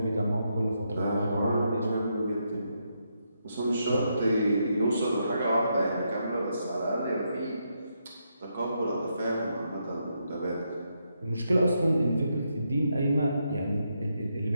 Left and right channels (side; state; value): both; inverted; correlation -0.81